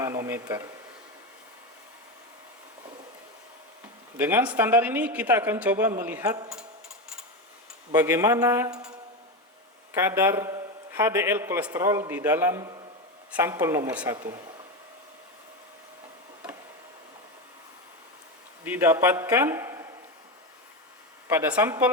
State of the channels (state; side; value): normal; both; correlation 0.16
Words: Dengan standar ini kita akan coba melihat bagaimana kadar HDL kolesterol di dalam sampel nomor 1. Didapatkan pada